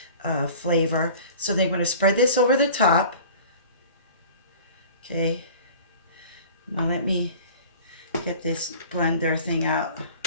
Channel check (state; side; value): inverted; both; correlation -0.43